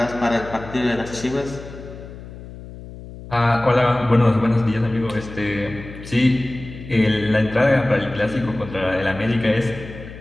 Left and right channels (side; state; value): left; noise; hum, 14 dB below the sound